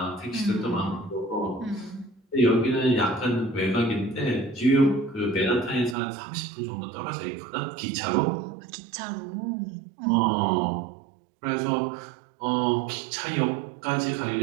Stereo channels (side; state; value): left; drops out; at 6.0 s